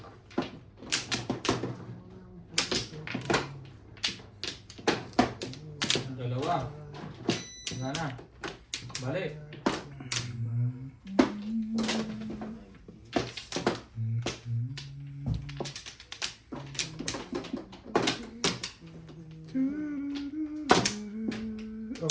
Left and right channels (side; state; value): both; identical; correlation 1.00